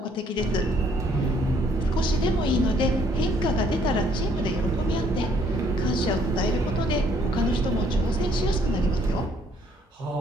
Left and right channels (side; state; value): both; normal; correlation 0.65